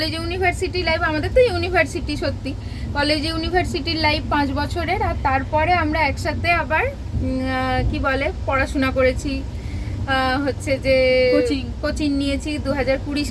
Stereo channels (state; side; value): identical; both; correlation 1.00